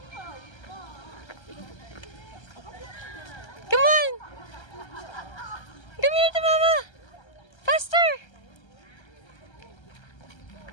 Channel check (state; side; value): late; right; 1.3 ms